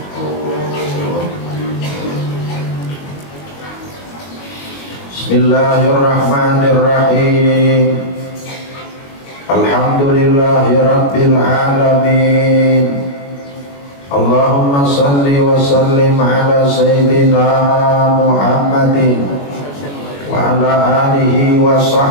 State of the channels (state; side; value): late; right; 21 ms